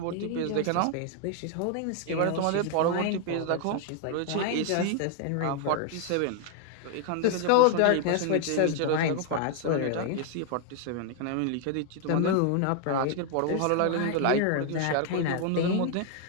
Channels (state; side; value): different; both; correlation 0.00